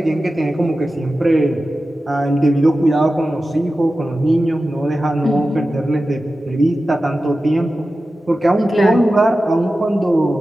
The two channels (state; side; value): normal; both; correlation 0.94